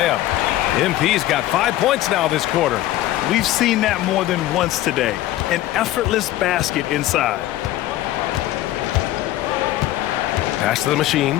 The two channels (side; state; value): right; quieter; 14.8 dB